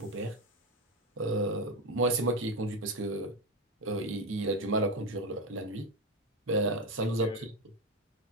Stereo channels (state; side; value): normal; both; correlation 0.13